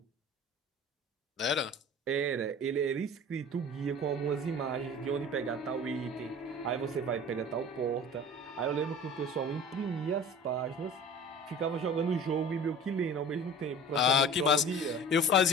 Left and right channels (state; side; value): normal; both; correlation 0.40